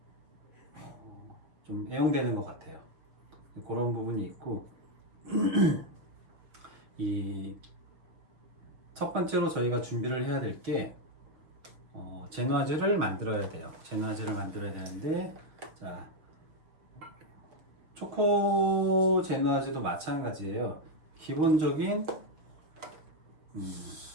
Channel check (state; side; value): late; left; 6.2 ms